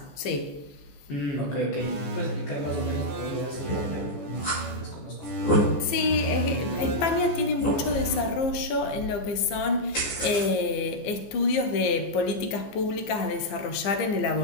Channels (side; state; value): right; late; 14 ms